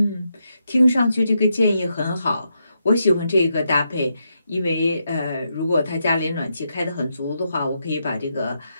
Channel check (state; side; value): inverted; both; correlation -0.82